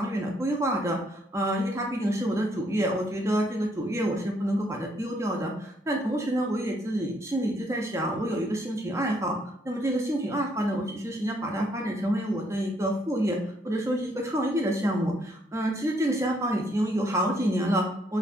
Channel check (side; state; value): both; normal; correlation 0.70